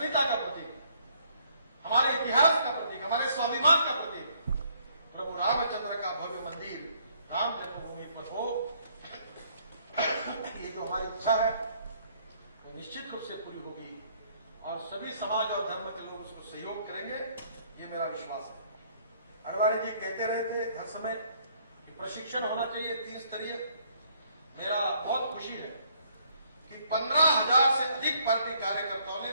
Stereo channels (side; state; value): both; inverted; correlation -0.66